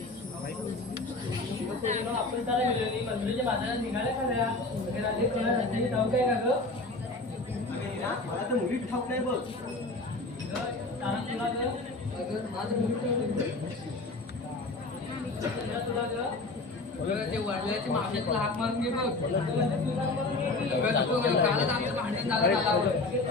आपण त्याला गेलो मंदिराच्या बाजारात निघाल्या खऱ्या वगैरे आले कोणा रस्त्याची ठाऊक काय का ग मला तर मुली ठाऊक नाही बघ तुला ग माझं मुली तुला ग ते वडिलाची मागण्यातला हाक मारून घे बघ कालच आमचं भांडण झालं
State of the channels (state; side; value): quieter; right; 3.2 dB